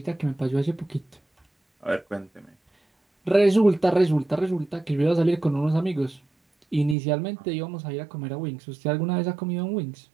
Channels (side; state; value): left; drops out; at 7.0 s